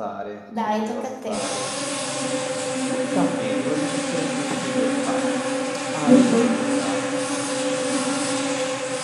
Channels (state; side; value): identical; both; correlation 1.00